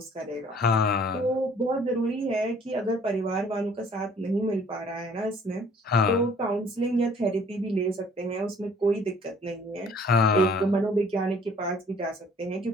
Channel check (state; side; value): normal; both; correlation 0.56